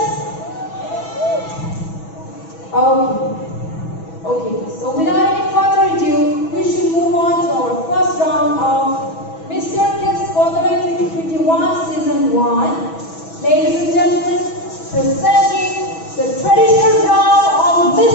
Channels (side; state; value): right; late; 6.1 ms